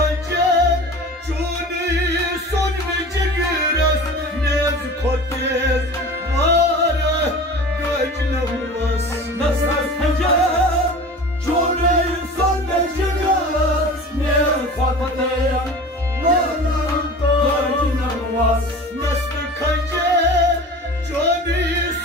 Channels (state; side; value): normal; both; correlation 0.37